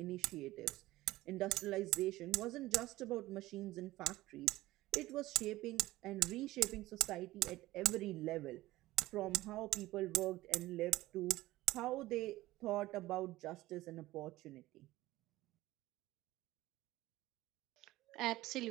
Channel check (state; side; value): quieter; left; 17.3 dB